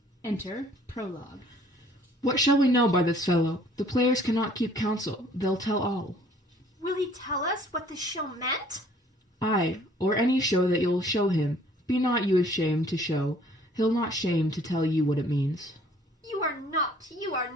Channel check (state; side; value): normal; both; correlation 0.57